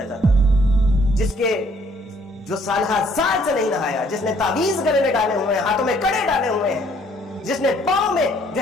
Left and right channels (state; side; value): normal; both; correlation 0.63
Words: جاتا تھا، جس کے جو سالہ سال سے نہیں نہایا، جس نے تعویذ گلے میں ڈالے ہوئے ہیں، ہاتھوں میں کڑے ڈالے ہوئے ہیں، جس نے پاؤں میں جو